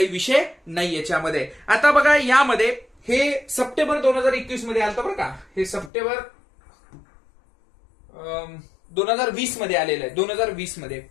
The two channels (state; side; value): drops out; right; at 5.9 s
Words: विषय नाही याच्यामध्ये. आता बघा यामध्ये हे सप्टेंबर 2021 मध्ये आलं बरं का. हे सप्टेंबर 2020 मध्ये आलेलं आहे. 2020 मध्ये.